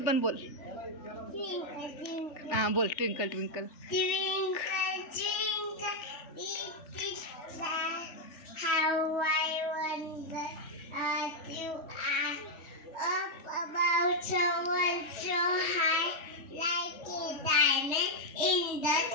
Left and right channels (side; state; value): right; late; 3.4 ms